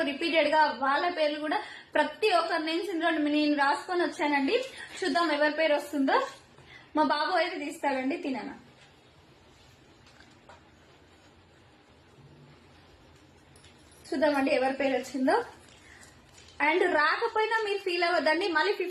రిపీటెడ్ గా వాళ్ళ పేర్లు కూడా ప్రతి ఒక్కరి నేమ్స్ నేను రాసుకొని వచ్చానండి. చూద్దాం ఎవరి పేరు వస్తుందో. మా బాబు అయితే తీస్తాడండి. తిననా చూద్దామండి ఎవరి పేరు వచ్చిందో. అండ్ రాకపోయినా మీరు ఫీల్ అవ్వద్దండి, మళ్ళీ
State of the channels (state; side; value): identical; both; correlation 1.00